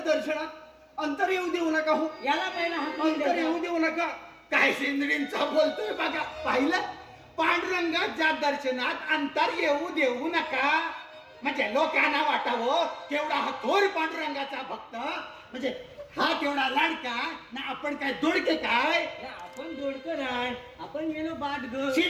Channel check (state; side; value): identical; both; correlation 1.00